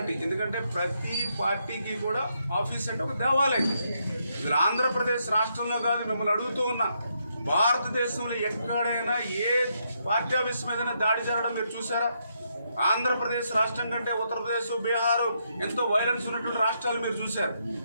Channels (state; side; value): inverted; both; correlation -0.78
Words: ఎందుకంటే ప్రతి పార్టీకి కూడా ఆఫీస్ అంటే ఒక దేవాలయం. ఇది ఆంధ్రప్రదేశ్ రాష్ట్రంలో కాదు, మిమ్మల్ని అడుగుతూ ఉన్నా, భారతదేశంలో ఎక్కడైనా ఏ పార్టీ ఆఫీస్ మీద దాడి జరగడం మీరు చూసారా? ఆంధ్రప్రదేశ్ రాష్ట్రం కంటే ఉత్తరప్రదేశ్, బీహార్ ఎంతో వైలెన్స్ ఉన్నటువంటి రాష్ట్రాలు మీరు చూశారు.